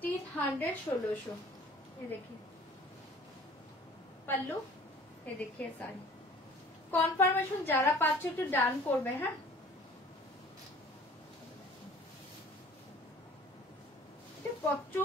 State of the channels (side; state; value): both; normal; correlation 0.49